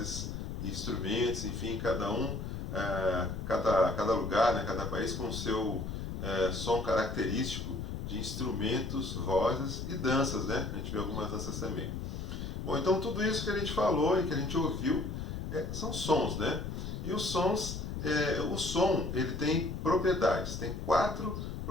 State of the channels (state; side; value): noise; left; rumble, 5 dB below the sound